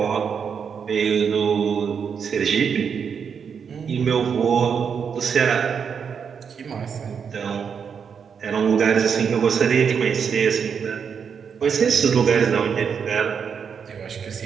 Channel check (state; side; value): quieter; left; 6.7 dB